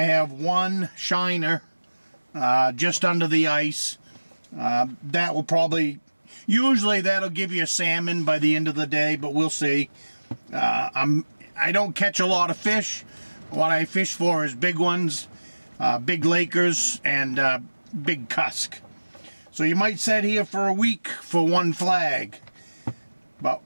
have 1 shiner just under the ice. That will probably, usually that'll give you a salmon by the end of the day, but we'll see. I don't catch a lot of fish. What I fish for is big ones, big Lakers, and big cusk. So you might sit here for a week for 1 flag, but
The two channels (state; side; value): inverted; both; correlation -1.00